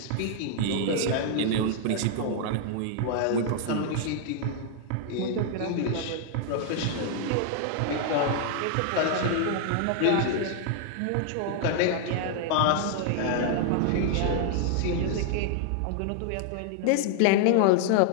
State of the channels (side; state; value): both; different; correlation 0.00